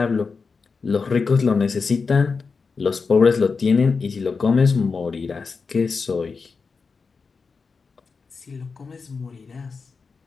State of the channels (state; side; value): quieter; right; 4.8 dB